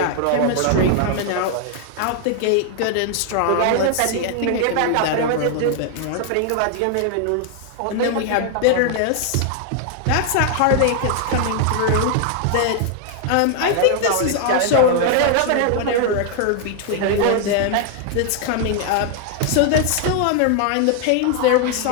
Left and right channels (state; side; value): different; both; correlation 0.00